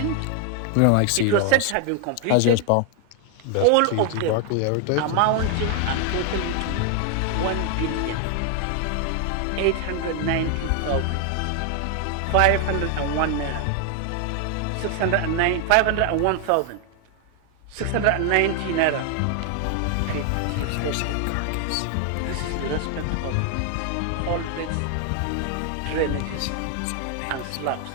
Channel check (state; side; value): different; both; correlation 0.00